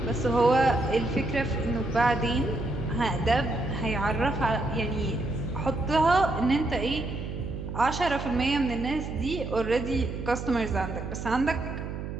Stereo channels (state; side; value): noise; right; hum, 7 dB below the sound